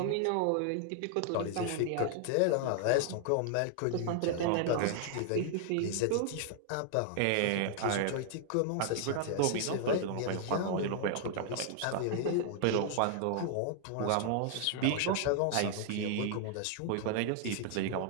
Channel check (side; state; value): both; different; correlation 0.00